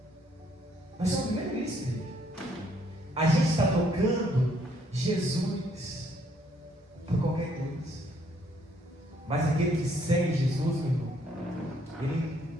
Nós estamos vivendo isso, igreja. A gente está tocando Jesus por qualquer coisa. Mas aquele que segue Jesus, meu irmão, ele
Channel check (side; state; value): both; normal; correlation 0.67